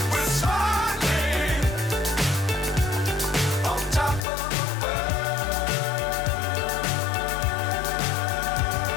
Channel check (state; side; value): drops out; right; at 4.2 s